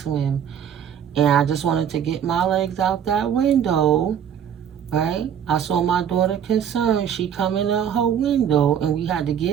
And I just wanted to get my legs out that window, right? I saw my daughter concerned. She coming out her window, and we had to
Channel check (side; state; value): left; quieter; 8.7 dB